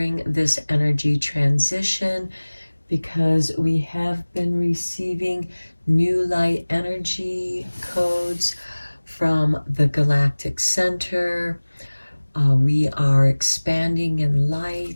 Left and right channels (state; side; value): inverted; both; correlation -1.00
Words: this energy transition, because we have been receiving new light energy codes from the Galactic Center. We are expanding in